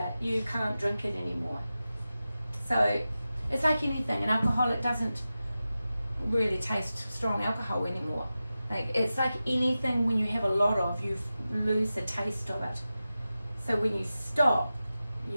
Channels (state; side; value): inverted; both; correlation -0.94